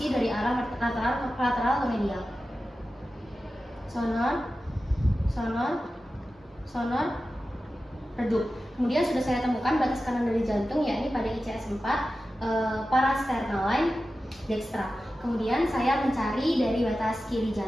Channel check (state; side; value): normal; both; correlation 0.93